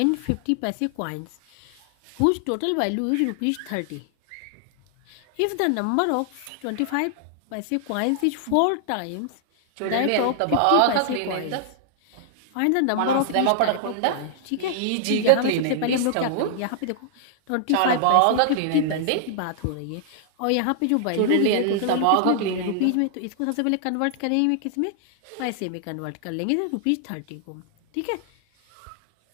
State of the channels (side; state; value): both; different; correlation -0.01